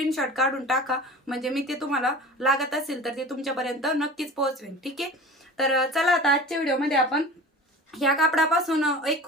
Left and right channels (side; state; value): both; normal; correlation 0.37